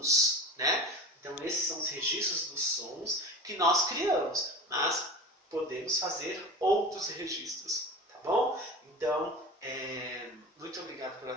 né? Então, esses são os registros dos sons que nós criamos, mas podemos fazer outros registros, tá bom? Então, muito obrigado pela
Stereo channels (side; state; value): both; normal; correlation 0.33